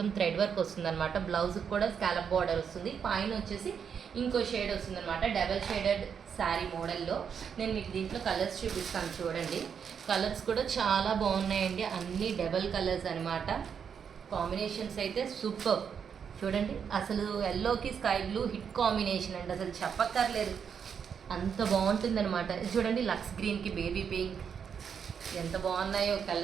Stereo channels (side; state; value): left; quieter; 7.2 dB